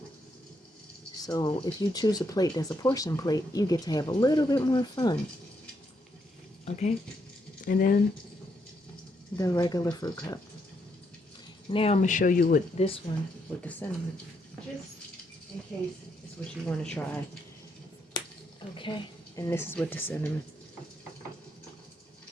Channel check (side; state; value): both; normal; correlation 0.77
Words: So if you choose a plate that's a portion plate, you get to have a little bit more fun. Okay? And then the regular fruit cup. Now I'm going to show you what this one with the cinnamon. Just in case it's what you want to try. Okay? And this is with the cinnamon.